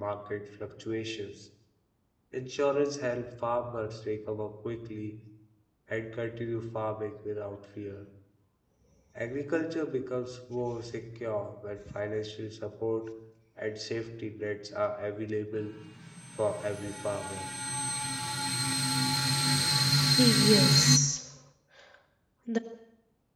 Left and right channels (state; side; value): identical; both; correlation 1.00